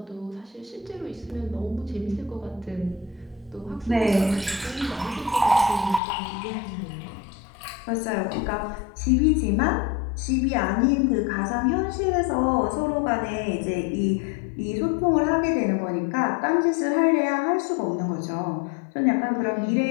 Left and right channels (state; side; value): drops out; right; at 6.0 s